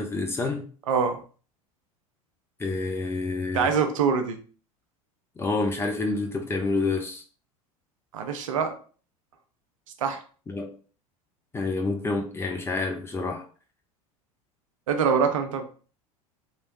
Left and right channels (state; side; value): normal; both; correlation 0.36